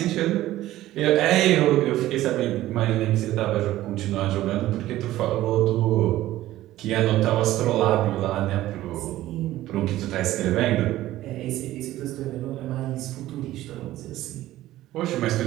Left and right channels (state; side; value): quieter; left; 15.1 dB